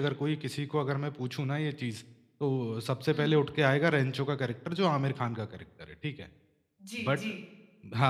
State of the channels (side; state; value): both; identical; correlation 1.00